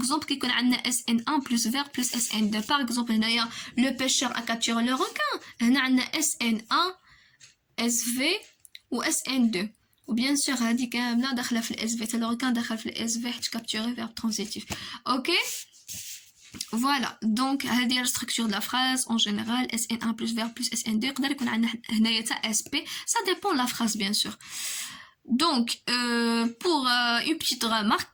كيكون عندنا اس ان 1 بلس فيرب بلس اس ان 2 باغ اكزومبل هنايا لو بيشور ا كابتور لو روكان هنا عندنا اس ان 1 اس في و اس ان 2 وبيان سور هذه كامله داخله في الاس في حتى لو كان داخل في الاس في حيت كابتوري فيرب ترانزيتيف اوكي فوالا دونك هذه لا ستركتور دو لا فراز اون جينيرال اس ان 1 بلس فيرب بلس اس ان 2 يقدر يكون عندنا هنايا حتى اس بي سا ديبون لا فراز بيان سور donc pour une petite remarque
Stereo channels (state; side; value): identical; both; correlation 1.00